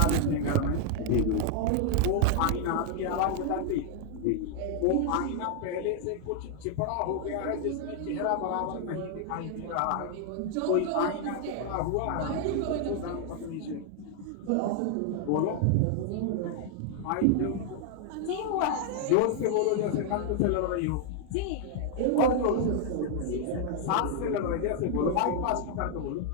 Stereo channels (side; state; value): both; different; correlation 0.00